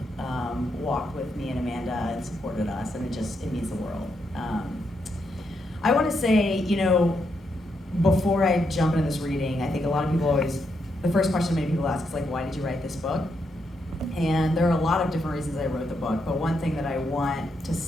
walked with me and Amanda and supported us, and it means the world. I want to say, before I jump into this reading, I think a lot of people the first question many people ask is like, why did you write this book? And there are a lot of different reasons I wrote the book, but one thing that I want to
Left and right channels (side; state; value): both; normal; correlation 0.80